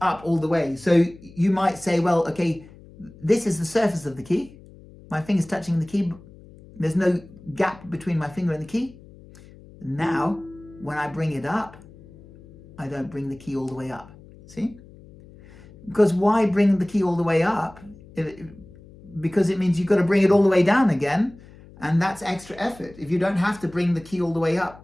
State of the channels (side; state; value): left; noise; hum, 21 dB below the sound